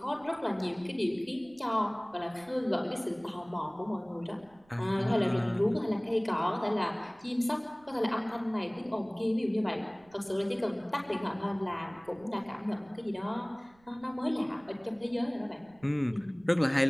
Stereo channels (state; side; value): noise; right; rumble, 29 dB below the sound